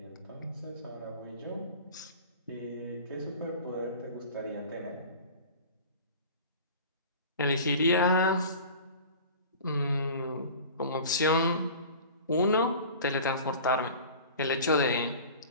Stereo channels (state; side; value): inverted; both; correlation -0.39